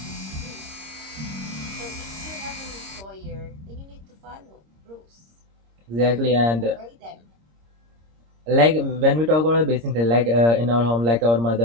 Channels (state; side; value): late; left; 26 ms